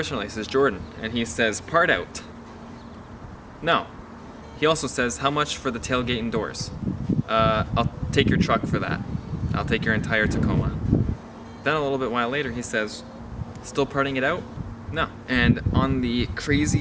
This is Jordan, and he says part out. No. He also says, how much for the tailgate and doors? I'll take your truck for that. I'll take your entire Tacoma. Then a little bit while later, he says, still parting it out? No. And on the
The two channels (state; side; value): identical; both; correlation 1.00